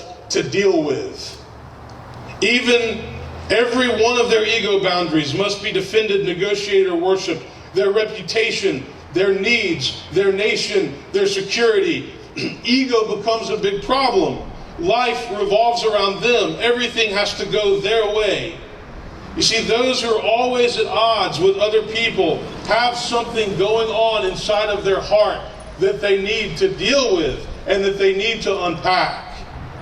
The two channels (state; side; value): identical; both; correlation 1.00